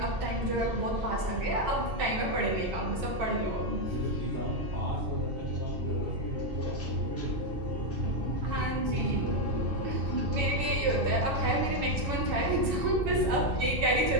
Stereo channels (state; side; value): late; left; 2.6 ms